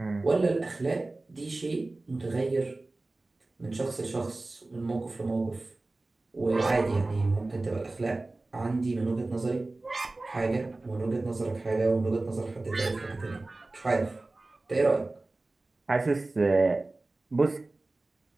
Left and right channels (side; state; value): left; quieter; 3.1 dB